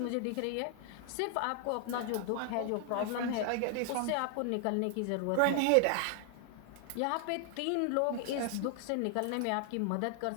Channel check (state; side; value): different; both; correlation 0.00